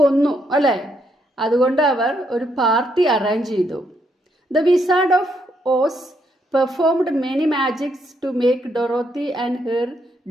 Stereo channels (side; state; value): both; normal; correlation 0.76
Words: അല്ലേ? അതുകൊണ്ട് അവർ ഒരു പാർട്ടി അറേഞ്ച് ചെയ്തു. The Wizard of Oz performed many magics to make Dorothy and her